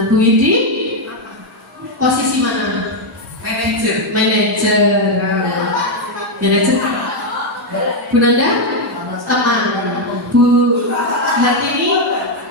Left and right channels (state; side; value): normal; both; correlation 0.02